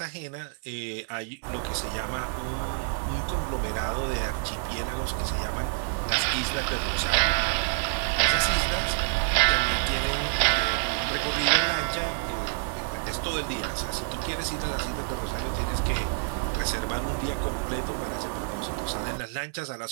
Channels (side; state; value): left; silent; 59 dB below the other